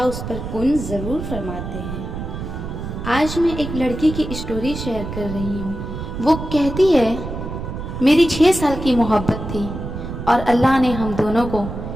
اس پر کن ضرور فرماتے ہیں۔ آج میں ایک لڑکی کی اسٹوری شیئر کر رہی ہوں۔ وہ کہتی ہے، میری 6 سال کی محبت تھی اور اللہ نے ہم دونوں کو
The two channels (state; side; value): noise; right; rumble, 7 dB below the sound